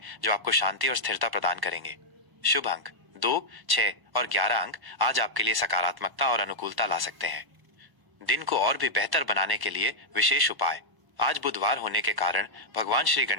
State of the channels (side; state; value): left; late; 1.1 ms